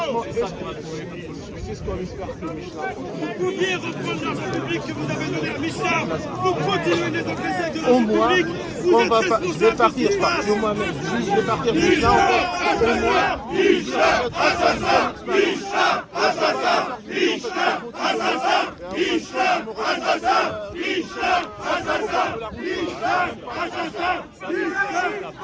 C'est ce qu'on espère que Michelin. Vous pouviez reprendre l'argent public que vous avez donné à Michelin. Vous continuez les encaisser de Au l'argent moins, public. Vous êtes je vais partir, je pars moi-même. Je vais partir de Michelin, au moins. Michelin, assassin. Michelin, assassin. Michelin, assassin. Michelin, assassin. Michelin, assassin. Michelin, assassin.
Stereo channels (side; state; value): both; identical; correlation 1.00